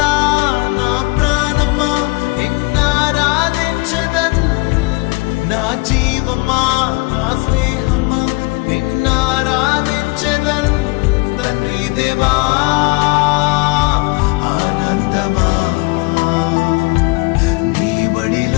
నా ప్రాణమా నిన్నారాధించదన్, నా జీవమా నా స్నేహమా నిన్నారాధించదన్. తండ్రి దేవా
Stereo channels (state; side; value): quieter; right; 26.2 dB